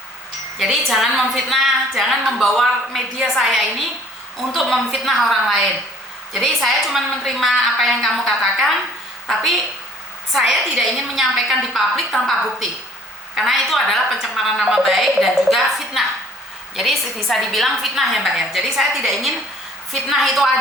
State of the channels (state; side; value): normal; both; correlation 0.55